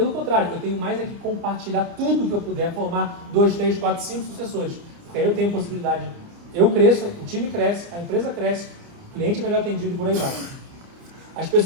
contrário, eu tenho mais é que compartilhar tudo que eu puder, formar 2, 3, 4, 5 sucessores. Porque aí eu tenho possibilidade, eu cresço, o time cresce, a empresa cresce, o cliente é melhor atendido e por aí vai. As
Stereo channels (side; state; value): left; late; 29 ms